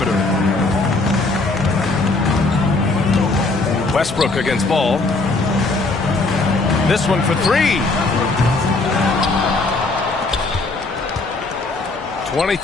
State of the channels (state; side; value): quieter; right; 3.4 dB